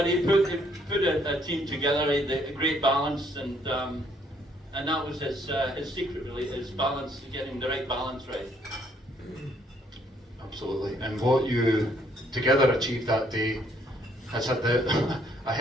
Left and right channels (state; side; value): normal; both; correlation 0.66